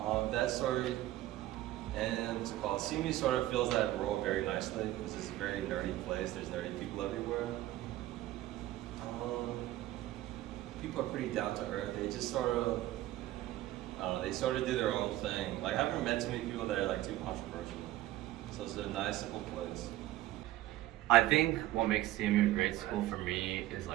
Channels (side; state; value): left; quieter; 15.3 dB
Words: sort of, and what's it called? CMU sort of fills that role very nicely because it's a very nerdy place. There's nerdy people everywhere. People are pretty down to earth. They just sort of, I don't know, they sort of do their own thing. Like I haven't met too many people that are like too controversial. So it's a nice, simple place. I think what makes CMU a great school for me is